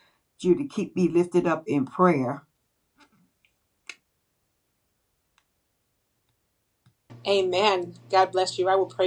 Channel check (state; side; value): identical; both; correlation 1.00